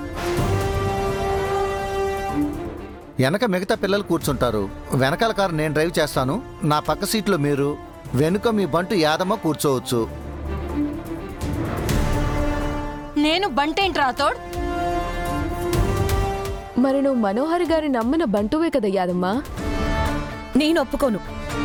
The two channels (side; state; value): both; identical; correlation 1.00